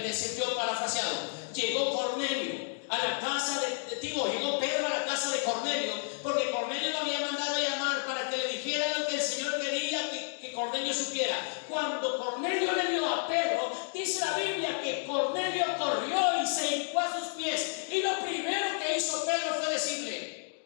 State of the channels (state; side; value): silent; right; 57 dB below the other